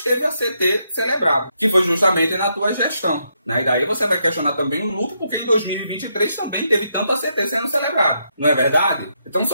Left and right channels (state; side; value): inverted; both; correlation -0.79